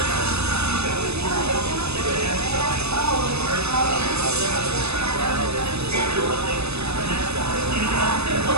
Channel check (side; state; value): left; late; 0.79 ms